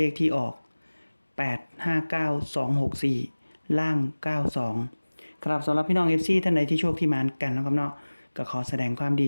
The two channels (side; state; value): both; inverted; correlation -1.00